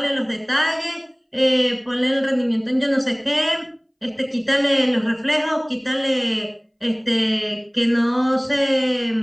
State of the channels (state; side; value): identical; both; correlation 1.00